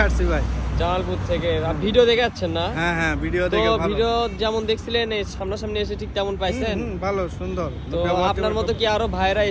আসছি ভাই। জামালপুর থেকে ভিডিও দেখে আসছেন না? হ্যাঁ হ্যাঁ ভিডিও তো দেখে ভালো। ভিডিও যেমন দেখছিলেন এই সামনাসামনি এসে ঠিক তেমন পাইছেন? ভালো সুন্দর। তো আপনার মতো কি আরো ভাইরা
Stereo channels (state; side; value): identical; both; correlation 1.00